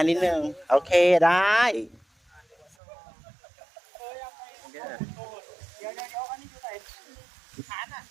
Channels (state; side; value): drops out; left; at 2.8 s